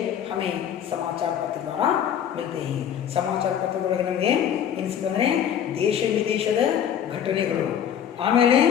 हमें समाचार पत्र द्वारा मिलते हैं. ಸಮಾಚಾರ ಪತ್ರದೊಳಗೆ ನಮಗೆ ಏನು ಸಿಕ್ಕಂದರೆ ದೇಶ ವಿದೇಶದ ಘಟನೆಗಳು, ಆಮೇಲೆ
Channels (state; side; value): quieter; right; 9.2 dB